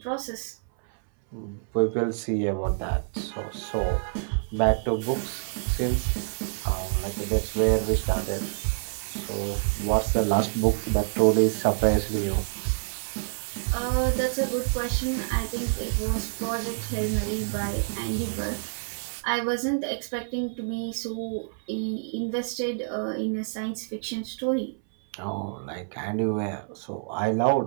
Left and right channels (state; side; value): silent; left; 60 dB below the other